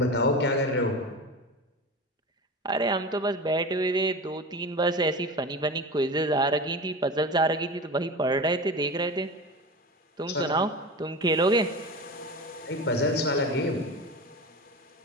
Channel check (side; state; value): both; normal; correlation 0.29